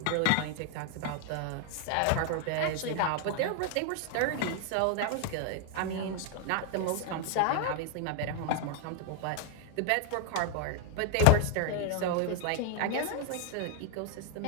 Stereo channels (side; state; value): both; different; correlation 0.01